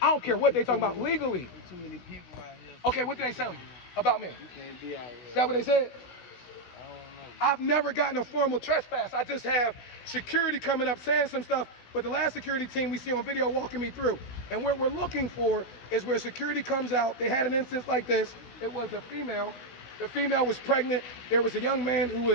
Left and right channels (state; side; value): late; right; 16 ms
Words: don't care what they talking about legally. There's too many people out here. Okay, what did they say about me? You can't be out here. Is that what they said? I don't know. I've never gotten a formal trespass. I just have security coming up saying some stuff. But the last security team we see on video walking me through. And what we're looking for is where security comes out. They had an instance like this. It was a female. The female was pregnant. There was a young man who